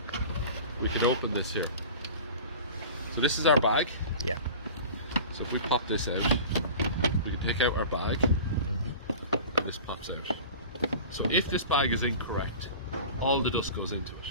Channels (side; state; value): both; inverted; correlation -0.37